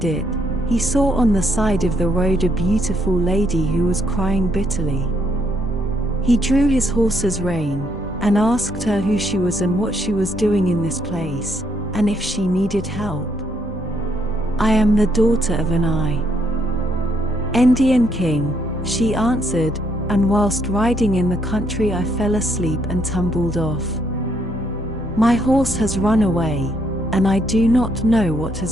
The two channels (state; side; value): normal; both; correlation 0.72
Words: it, he saw on the side of the road a beautiful lady who was crying bitterly. He drew his horse's rein, and asked her who she was and what she was doing in this place, and if she needed help. "I am the daughter of an Indian king," she answered, "and whilst riding in the country I fell asleep and tumbled off. My horse has run away, and I do not know what